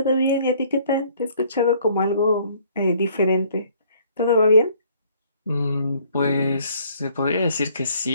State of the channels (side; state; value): both; inverted; correlation -0.60